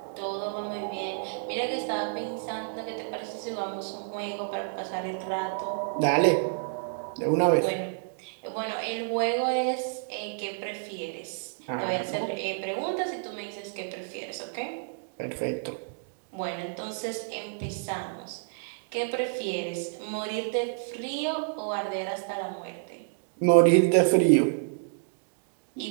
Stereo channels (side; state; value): left; silent; digital silence